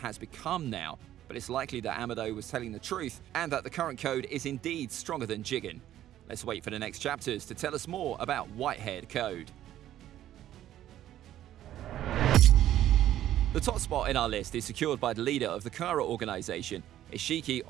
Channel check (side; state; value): left; quieter; 12.4 dB